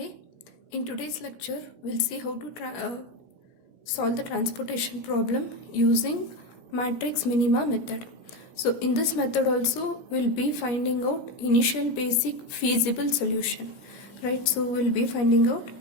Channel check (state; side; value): late; right; 17 ms